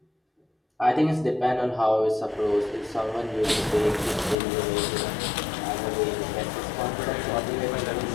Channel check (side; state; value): right; drops out; at 4.4 s